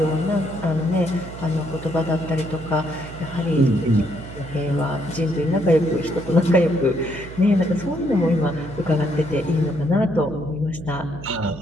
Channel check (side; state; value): right; noise; hum, 13 dB below the sound